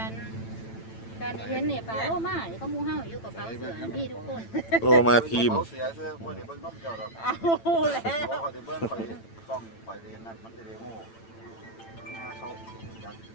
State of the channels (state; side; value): late; right; 8.9 ms